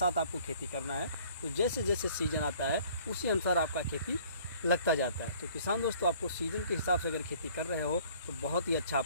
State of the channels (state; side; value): inverted; both; correlation -0.55